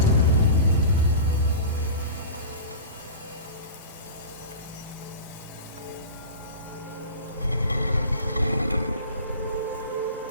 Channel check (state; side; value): inverted; both; correlation -0.34